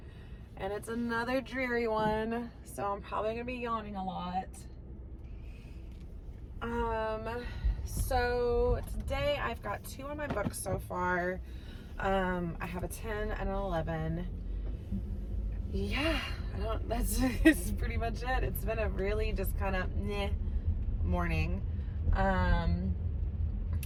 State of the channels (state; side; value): identical; both; correlation 1.00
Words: and it's another dreary one, so I'm probably gonna be yawning a lot. So today I've got 2 on my books so far. I have a 10 and an 11. Yeah, that's pretty much it. It's been a really just kind of morning.